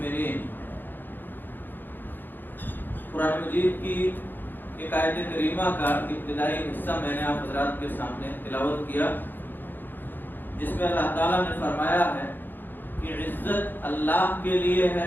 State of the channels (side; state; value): right; late; 0.092 ms